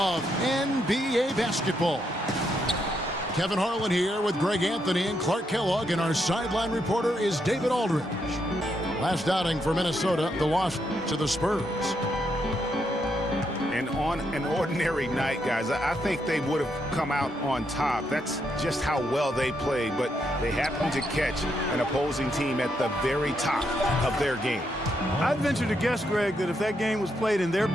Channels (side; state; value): both; normal; correlation 0.79